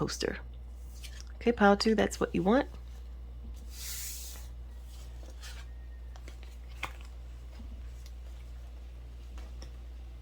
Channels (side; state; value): both; identical; correlation 1.00